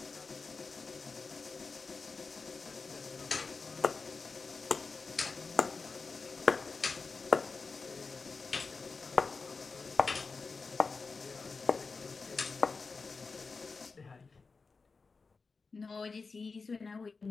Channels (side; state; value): right; quieter; 4.4 dB